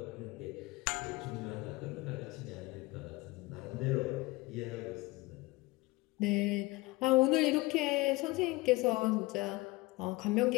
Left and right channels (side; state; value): right; quieter; 21.9 dB